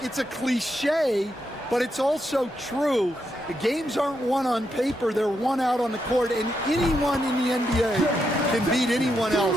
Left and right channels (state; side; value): normal; both; correlation 0.82